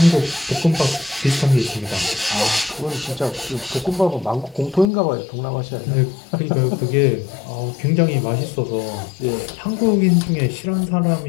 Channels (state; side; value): drops out; right; at 4.9 s